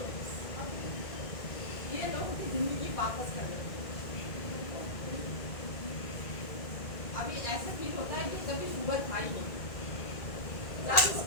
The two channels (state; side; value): late; right; 1.9 ms